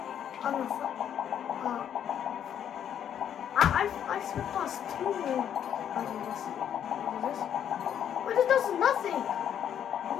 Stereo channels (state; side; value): quieter; right; 9.4 dB